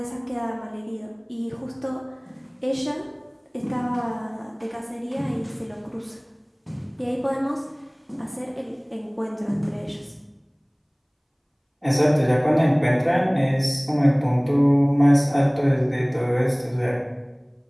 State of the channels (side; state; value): both; identical; correlation 1.00